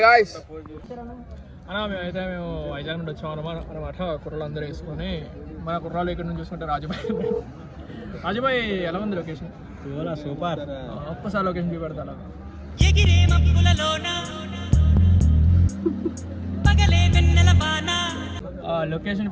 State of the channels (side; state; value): both; identical; correlation 1.00